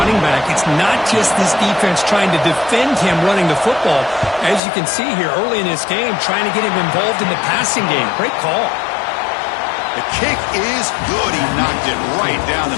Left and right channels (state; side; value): drops out; right; at 4.6 s